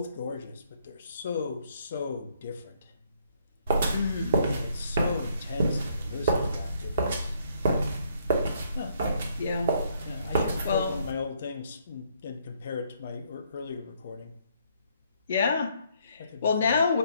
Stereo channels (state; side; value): inverted; both; correlation -0.69